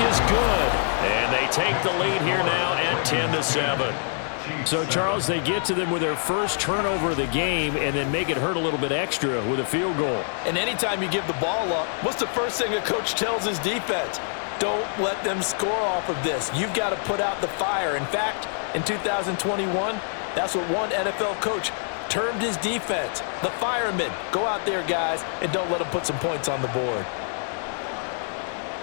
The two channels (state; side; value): silent; right; digital silence